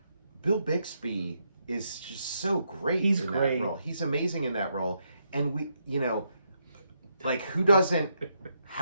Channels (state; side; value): inverted; both; correlation -0.79